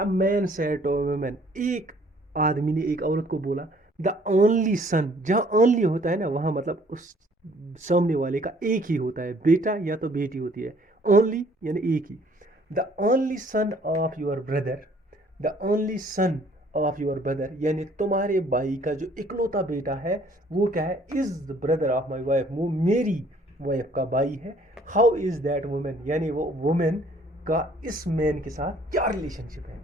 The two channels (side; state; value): both; normal; correlation 0.59